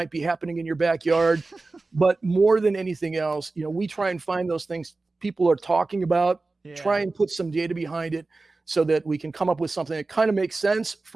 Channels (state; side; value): quieter; left; 3.5 dB